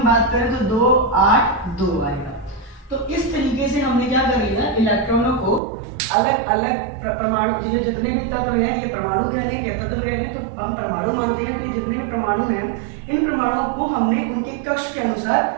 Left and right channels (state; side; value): drops out; left; at 5.6 s